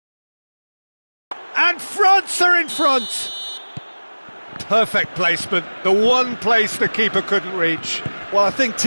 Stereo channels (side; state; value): both; inverted; correlation -1.00